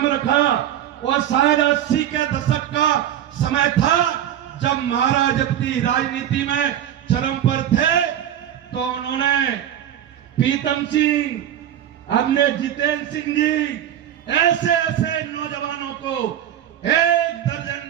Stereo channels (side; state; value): left; quieter; 10.7 dB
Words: रखा और शायद 80 के दशक का समय था, जब महाराज अपनी राजनीति में चरम पर थे, तो उन्होंने प्रीतम सिंह, हमने जितेंद्र सिंह जी, ऐसे ऐसे नौजवानों को, 1 दर्जन